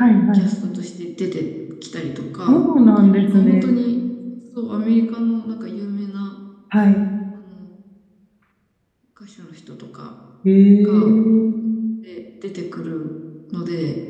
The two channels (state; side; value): identical; both; correlation 1.00